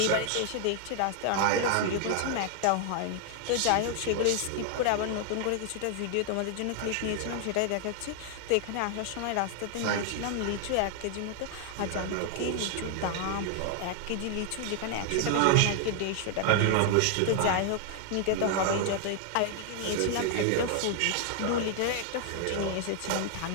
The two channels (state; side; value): different; both; correlation 0.00